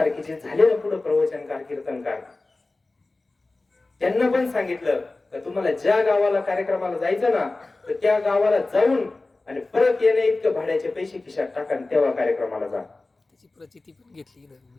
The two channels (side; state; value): right; quieter; 3.2 dB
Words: जे झाले ना पुढे प्रवचनकार कीर्तनकार, त्यांना पण सांगितलं का तुम्हाला ज्या गावाला कार्यक्रमाला जायचं ना, तर त्या गावाला जाऊन आणि परत येणे इतकं भाड्याचे पैसे खिशात टाका, तेव्हा कार्यक्रमाला जा. त्याची प्रचिती पण घेतली